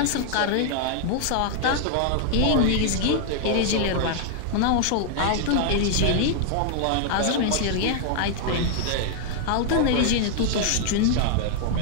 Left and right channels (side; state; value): both; different; correlation 0.00